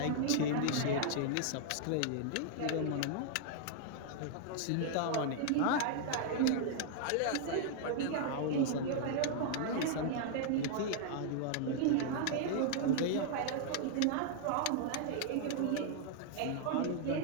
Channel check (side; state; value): both; different; correlation 0.00